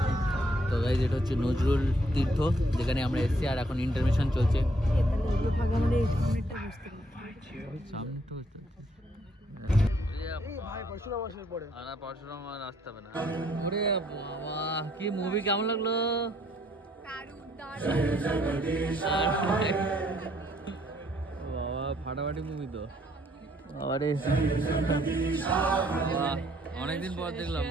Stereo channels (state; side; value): normal; both; correlation 0.67